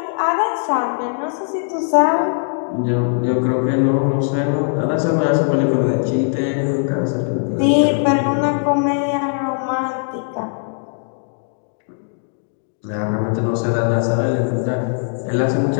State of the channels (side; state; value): right; silent; digital silence